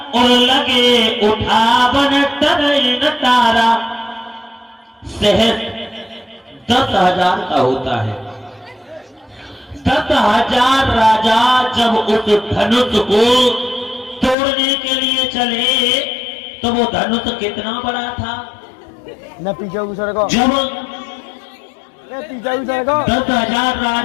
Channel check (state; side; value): drops out; right; at 14.4 s